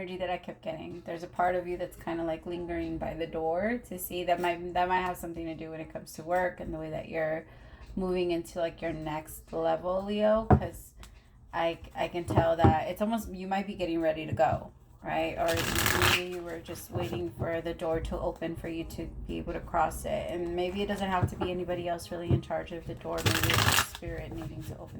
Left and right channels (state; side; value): identical; both; correlation 1.00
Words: that I kept getting. There's a part of you that's kind of like lingering by the door to see that might have something to do when it comes to work and the way that you're moving into like your next level, Leo. Because I can tell that it's almost, you might be getting ready to go, right? Or maybe you were just waiting for the door to open for you to be able to cross it. And maybe it doesn't have to be anybody else really in charge of the door. Maybe it's the spirit needing to open